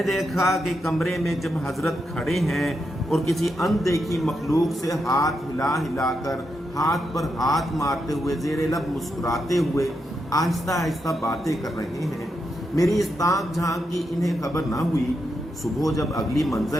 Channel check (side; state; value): both; normal; correlation 0.84